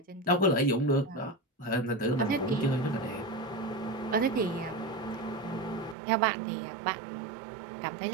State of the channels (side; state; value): left; drops out; at 6.0 s